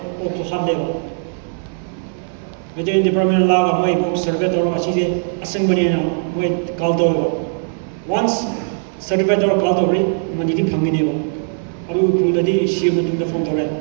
or to have level. Veterinary department laga may book certificate or achise assembly na may kaldo. Once certificate or kaldo manidi panginebo. Aru kuladi share matung the phone tore.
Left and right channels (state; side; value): silent; left; digital silence